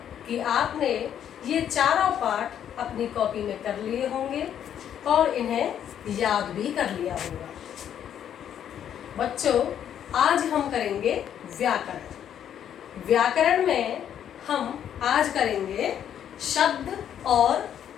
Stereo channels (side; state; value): right; quieter; 9.6 dB